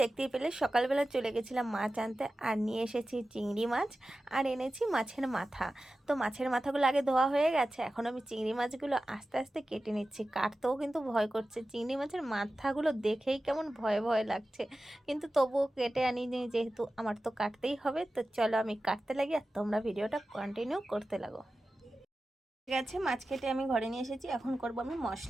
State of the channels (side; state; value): both; normal; correlation 0.94